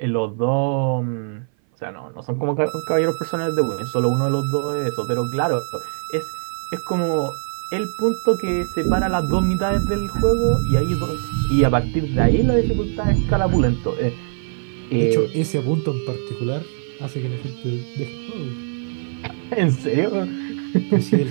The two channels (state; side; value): silent; left; 58 dB below the other